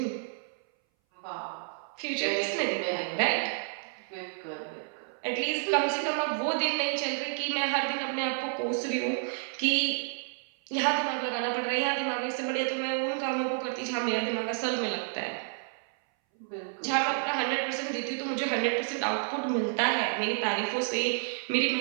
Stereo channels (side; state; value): left; silent; 58 dB below the other